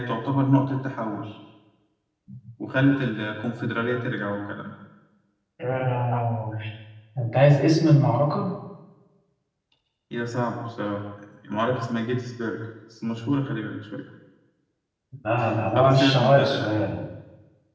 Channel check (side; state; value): both; identical; correlation 1.00